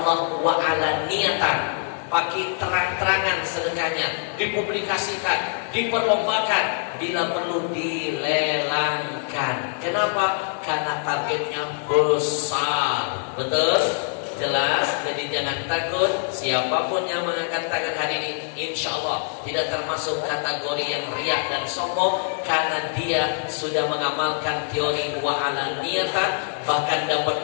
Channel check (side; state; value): right; silent; digital silence